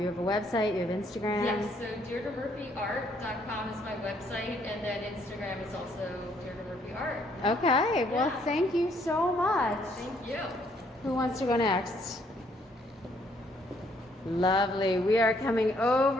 have a website, you have Instagram. Yes, so DeirdreMurphyArt.com is my website, and then Instagram is also Deirdre Murphy Art. Okay, well, thank you so much. Thank you. Who wants to go next? Lovely. We are coming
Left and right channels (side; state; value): both; normal; correlation 0.67